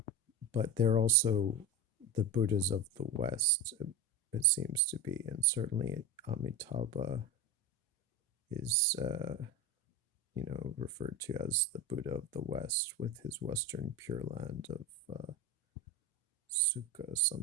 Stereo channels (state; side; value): normal; both; correlation 0.22